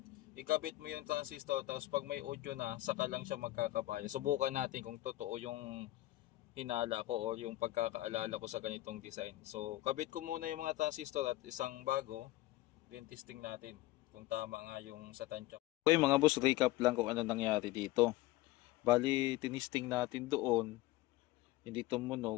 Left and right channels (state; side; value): quieter; right; 17.5 dB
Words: ikabit mo yung transistor, tapos pag may audio na, saka lang siya magkakabaya. Subukan natin kung totoo yung hinala ko o yung pagkakaalala ko sa ganitong design. So, kabit ko muna yung mga transistor at isang bago, then testing natin kung tama nga yung sa tansya. Okay mga boss, recap lang kung ano nangyari dito. Bali, tinisting natin doon, hindi